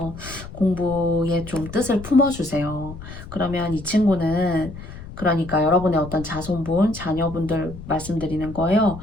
공부에 좀 뜻을 품어주세요. 그러면 이 친구는 그러니까 여러분의 어떤 자손분, 자녀분들 말씀드리는 거예요.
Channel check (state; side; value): noise; left; rumble, 13 dB below the sound